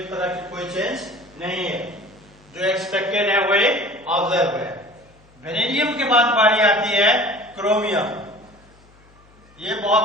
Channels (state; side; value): noise; left; hum, 28 dB below the sound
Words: तरह की कोई चेंज नहीं है। जो एक्सपेक्टेड है वही ऑब्जर्व है। वेनेडियम के बाद बारी आती है क्रोमियम। ये